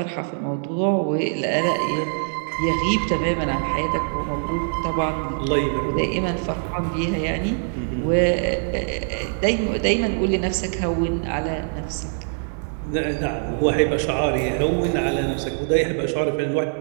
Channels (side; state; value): left; silent; digital silence